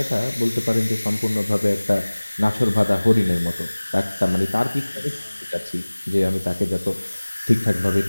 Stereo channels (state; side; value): inverted; both; correlation -1.00